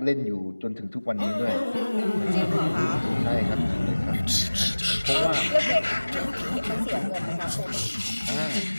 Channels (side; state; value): both; inverted; correlation -1.00